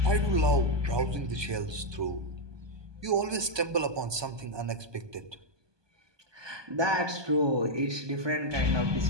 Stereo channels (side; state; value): left; late; 1.2 ms